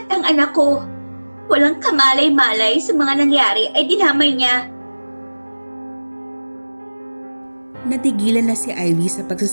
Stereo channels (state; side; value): inverted; both; correlation -1.00